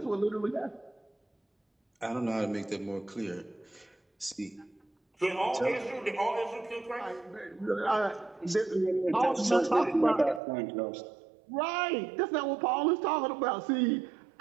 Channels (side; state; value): left; drops out; at 10.4 s